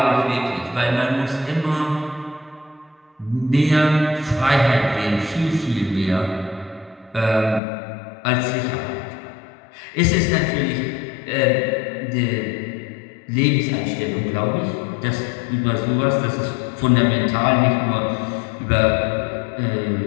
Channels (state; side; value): drops out; right; at 7.6 s